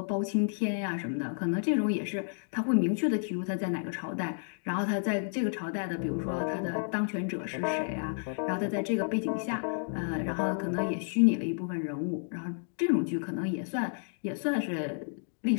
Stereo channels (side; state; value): right; silent; digital silence